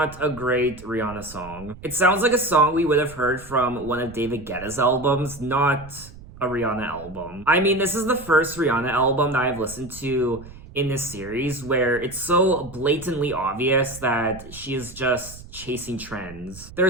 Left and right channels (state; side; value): noise; right; rumble, 17 dB below the sound